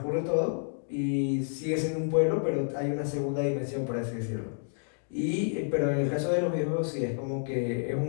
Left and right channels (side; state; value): right; silent; digital silence